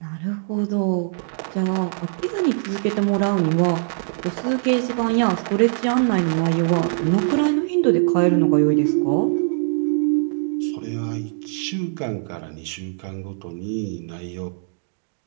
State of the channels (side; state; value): left; silent; digital silence